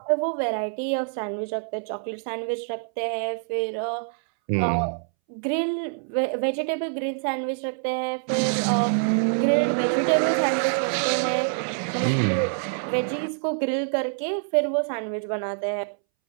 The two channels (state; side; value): silent; left; 61 dB below the other